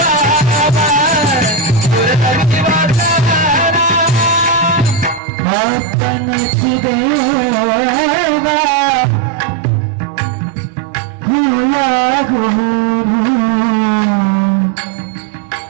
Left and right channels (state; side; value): drops out; left; at 5.2 s